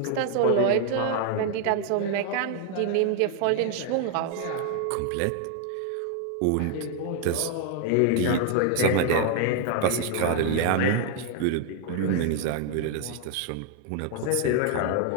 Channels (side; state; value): both; different; correlation 0.00